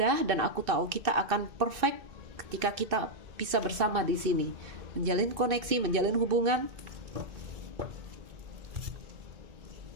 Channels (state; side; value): late; left; 2.6 ms